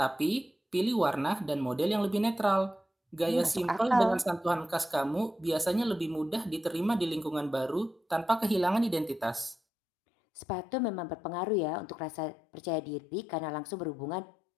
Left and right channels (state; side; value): drops out; right; at 9.6 s